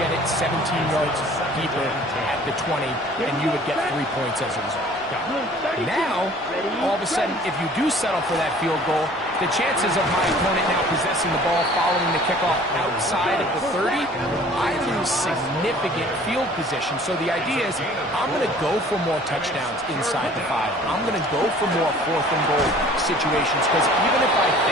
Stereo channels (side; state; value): both; normal; correlation 0.51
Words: it 17 yards deeper at the 20, and you would get 3 points as a result. Now, all of a sudden, if you do settle for that field goal, the chances of my opponent now possessing the ball following the kickoff outside of the 30, I lose significant field position. So the idea is I'm going to go for more touchdowns inside the 5. I'm going to go for more 4th and goal situations, because even if I